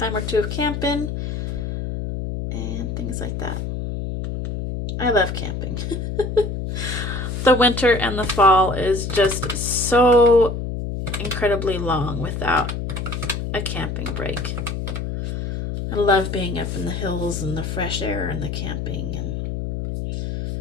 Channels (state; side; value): noise; left; hum, 4 dB below the sound